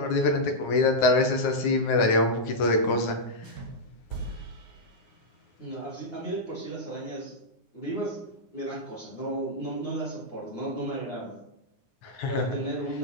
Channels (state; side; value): late; right; 9.7 ms